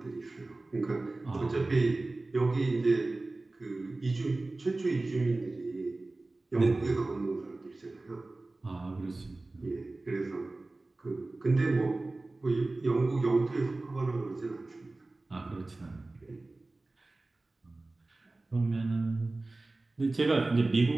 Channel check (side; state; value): left; quieter; 3.1 dB